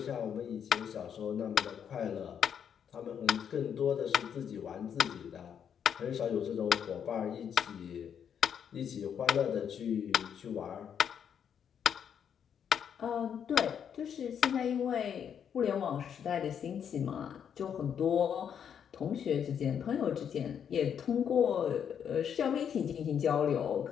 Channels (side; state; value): right; quieter; 8.2 dB